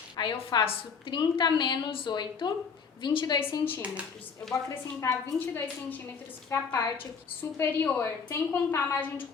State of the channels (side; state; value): right; quieter; 5.8 dB